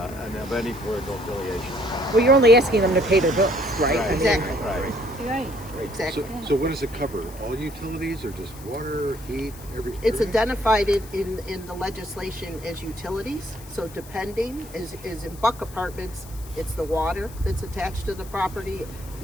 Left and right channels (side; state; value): left; noise; hiss, 19 dB below the sound